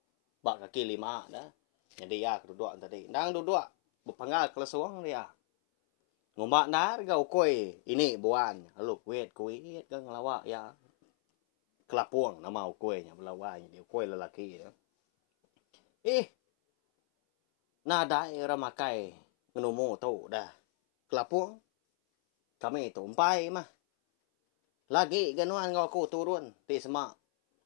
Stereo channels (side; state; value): right; silent; 55 dB below the other